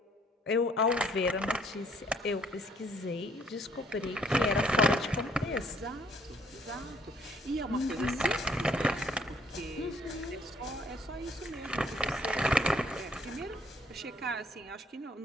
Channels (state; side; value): normal; both; correlation 0.64